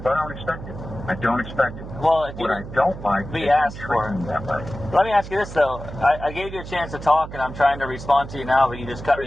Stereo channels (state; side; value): noise; right; hum, 11 dB below the sound